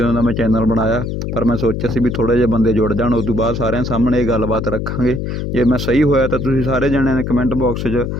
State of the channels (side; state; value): left; noise; hum, 3 dB below the sound